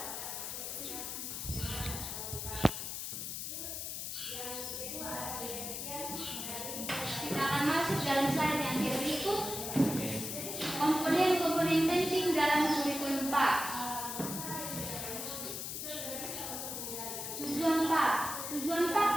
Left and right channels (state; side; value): noise; left; hiss, 5 dB below the sound